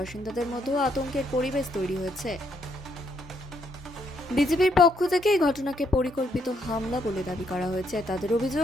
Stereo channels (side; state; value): both; normal; correlation 0.74